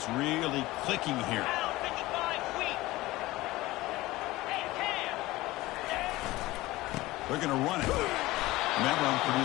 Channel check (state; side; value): quieter; right; 18.7 dB